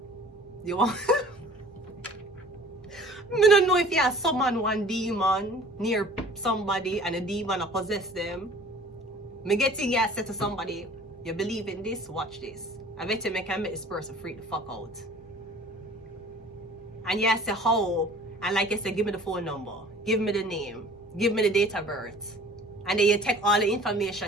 You want? I don't know if you have summon one demon near somebody and a demon possess them. Me getting you say to somebody, you believe in this, watch this. I bet you can make this person freak the fuck out. And you say how, and like I said, give me the phone number, give me the name, give me the date of birth. And then you take all the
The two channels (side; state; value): both; normal; correlation 0.48